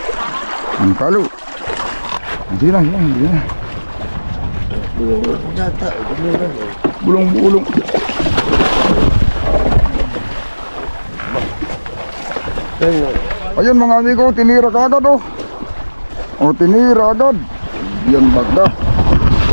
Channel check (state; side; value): inverted; both; correlation -1.00